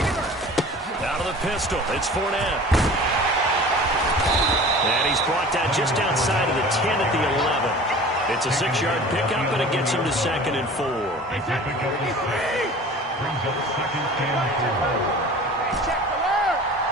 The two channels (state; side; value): normal; both; correlation 0.42